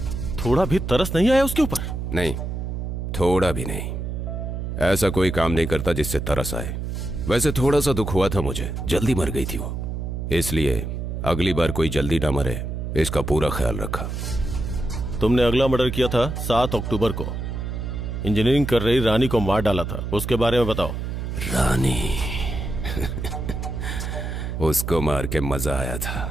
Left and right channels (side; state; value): right; noise; hum, 4 dB below the sound